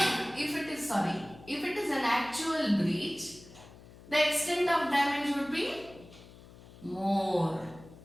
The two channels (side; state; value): left; noise; hum, 20 dB below the sound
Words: if it is an actual breach, the extent of damage would be more.